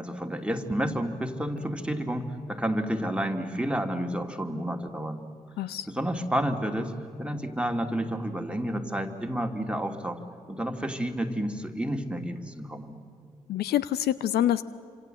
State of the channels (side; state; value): both; normal; correlation 0.74